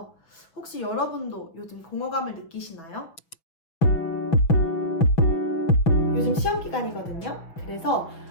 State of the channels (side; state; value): right; late; 5.9 ms